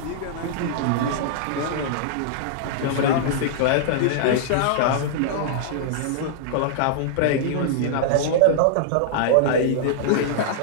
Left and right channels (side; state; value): both; different; correlation -0.01